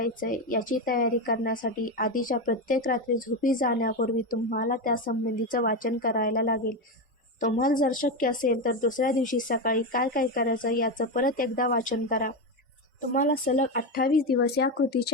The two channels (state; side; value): normal; both; correlation 0.13